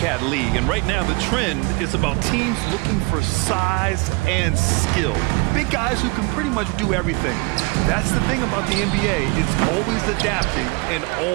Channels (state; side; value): quieter; left; 27.4 dB